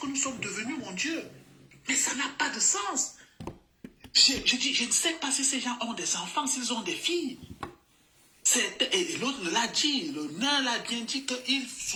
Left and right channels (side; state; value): both; identical; correlation 1.00